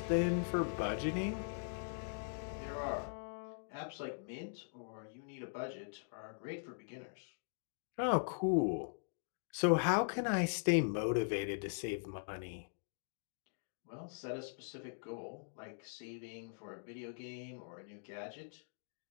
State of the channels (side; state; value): right; silent; digital silence